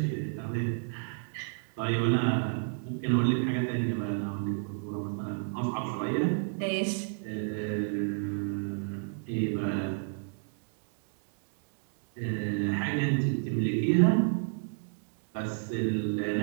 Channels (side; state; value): left; silent; digital silence